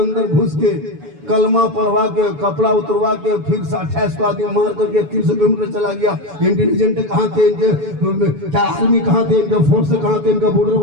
घुस के कलमा पढ़वा के, कपड़ा उतरवा के, फिर 28 को आदमी मार करके 300 किलोमीटर चला गया। इंटेलिजेंट कहाँ थे इनके, क्या आर्मी कहाँ थे, इनका फोर्स कहाँ थे, इनका बॉर्डर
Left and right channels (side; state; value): left; late; 7.0 ms